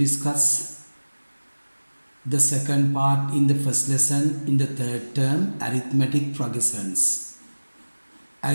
the second part in the first lesson in the third term, arithmetic progressions.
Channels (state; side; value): inverted; both; correlation -1.00